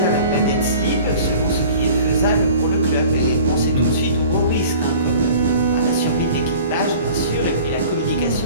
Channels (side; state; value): both; inverted; correlation -0.45